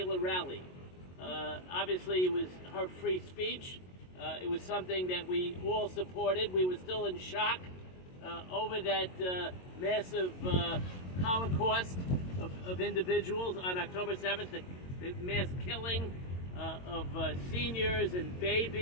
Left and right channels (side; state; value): right; late; 22 ms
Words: rally. Obviously, it was her free speech. It was something that we all supported. We were still in shock over that massive Holocaust of individuals on October 7th, the mass killing of seniors and